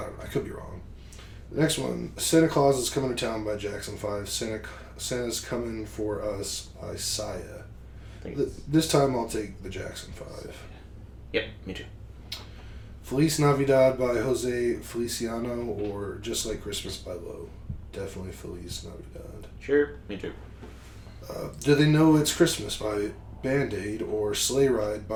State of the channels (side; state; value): both; identical; correlation 1.00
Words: don't know. I could be wrong. The next one, Santa Claus is Coming to Town by Jackson 5. Santa's Coming for Us by Sia. This time I'll take the Jackson 5. Yep, me too. Feliz Navidad by Jose Feliciano, or Just Like Christmas by Low. Definitely Feliz Navidad. Sure, me too. Do They Know It's Christmas by Band-Aid, or Sleigh Ride